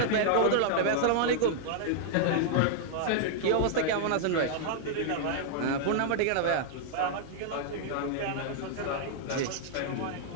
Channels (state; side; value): different; both; correlation -0.01